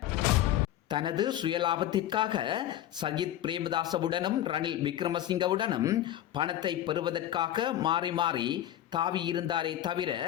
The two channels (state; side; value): quieter; right; 12.2 dB